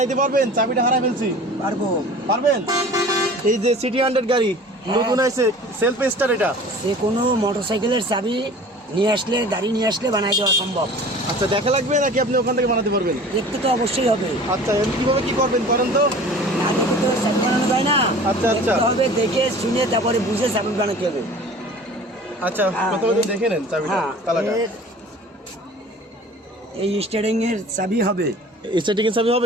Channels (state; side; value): normal; both; correlation 0.43